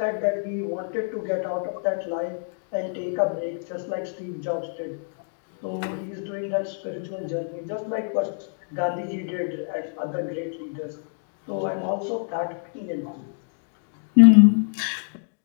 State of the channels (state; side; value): silent; right; digital silence